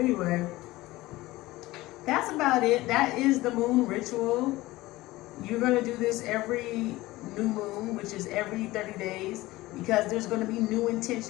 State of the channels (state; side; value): quieter; right; 18.6 dB